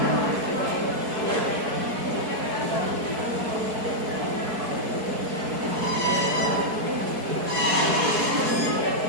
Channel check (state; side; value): late; left; 4.6 ms